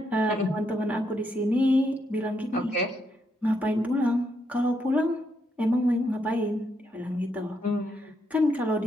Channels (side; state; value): both; normal; correlation 0.78